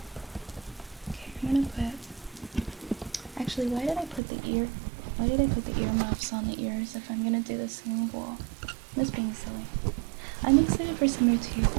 Okay, I'm gonna put... Actually, why did I put the earmuffs on the ears if I'm gonna do the single? I'm just being silly. I'm excited for summer too.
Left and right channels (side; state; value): left; drops out; at 4.2 s